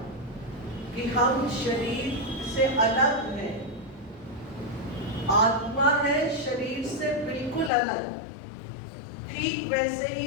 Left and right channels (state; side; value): drops out; right; at 7.7 s